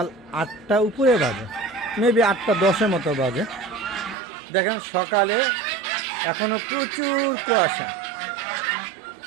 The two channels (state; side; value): drops out; left; at 4.2 s